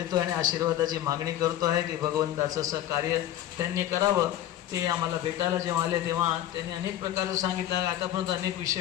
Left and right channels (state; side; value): quieter; right; 12.5 dB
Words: आणि आशीर्वादाची मागणी करतो आहे की भगवंताचं असं कार्य त्यांनी करावं. ते आम्हाला भेटायला जेव्हा आले तेव्हा त्यांनी अनेक प्रकारचं सांगितलं. आतापर्यंत अनेक